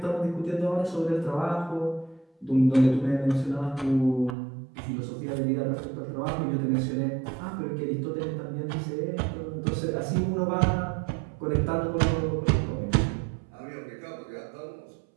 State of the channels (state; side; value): drops out; left; at 4.3 s